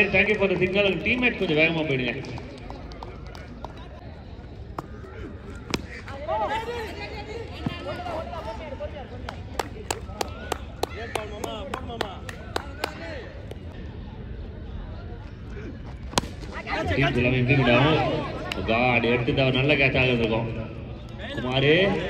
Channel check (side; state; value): both; identical; correlation 1.00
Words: Thank you for the signal. Teammate கொஞ்சம் வேகமாக போயிடுங்க. எடுத்துட்டா நல்ல கேட்ச் ஆகிருக்கும். குமார்